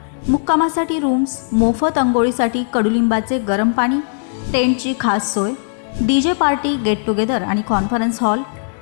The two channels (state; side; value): silent; right; digital silence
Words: मुक्कामासाठी रूम्स, मोफत अंघोळीसाठी कडुलिंबाचे गरम पाणी, टेंटची खास सोय, डीजे पार्टी, गेट टुगेदर आणि कॉन्फरन्स हॉल,